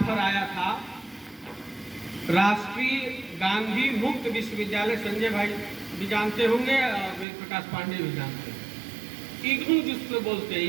आया था राष्ट्रीय गांधी मुक्त विश्वविद्यालय, संजय भाई भी जानते होंगे, वेद प्रकाश पांडे भी जानते हैं, इग्नू जिसको बोलते हैं,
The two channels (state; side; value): drops out; left; at 7.2 s